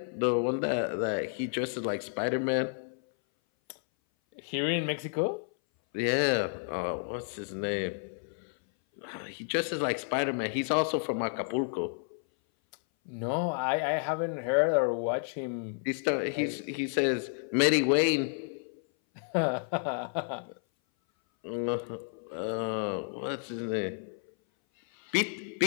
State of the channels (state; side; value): silent; right; 57 dB below the other